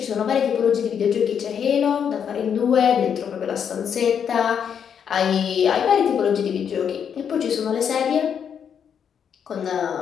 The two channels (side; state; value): right; quieter; 7.8 dB